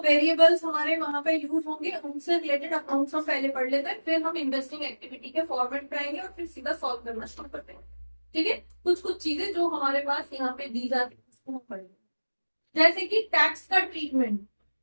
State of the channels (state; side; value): inverted; both; correlation -1.00